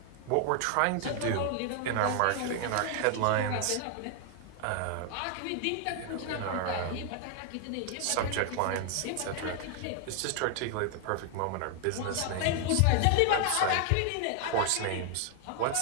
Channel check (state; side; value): different; both; correlation 0.00